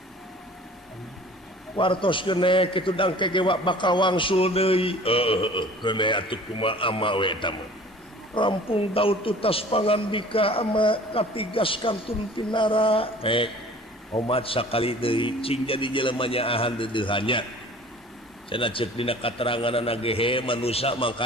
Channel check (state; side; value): normal; both; correlation 0.46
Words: wartoskeun kitu dangke ge bakal wangsul deui kene atuh kumaha ama we eta mah rampung daud tutas pangandika ama katigas kantun tinara omat sakali deui cing jadi jelema nyaahan deudeuhannya cenah ceuk dina kateranganna ge manusia